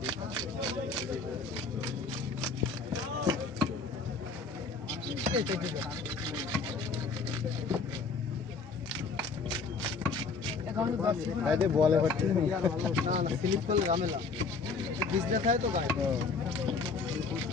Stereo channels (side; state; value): right; quieter; 4.5 dB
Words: গাইতে বলে হচ্ছে না না স্লিপ করলে ঝামেলা বিজলে খায় তো গায়